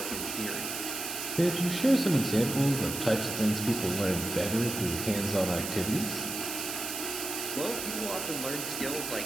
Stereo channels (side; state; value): right; noise; hiss, 5 dB below the sound